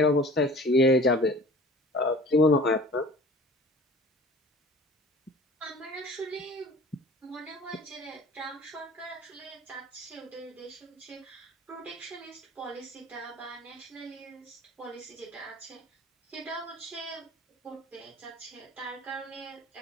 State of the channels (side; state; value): both; normal; correlation 0.44